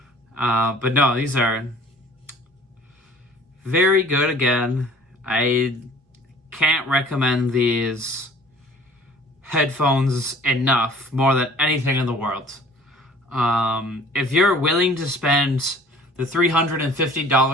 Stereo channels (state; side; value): normal; both; correlation 0.50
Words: But no, these are very good again. I can't recommend these headphones enough, more than anything in the world. If you're willing to spend the